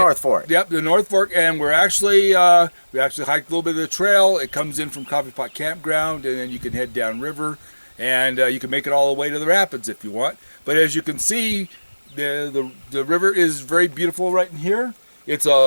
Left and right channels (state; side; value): inverted; both; correlation -1.00